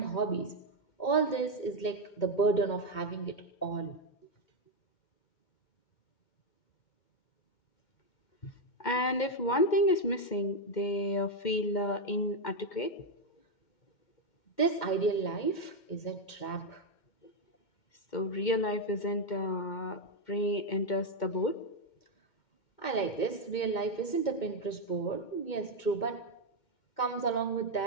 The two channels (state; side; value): late; right; 2.1 ms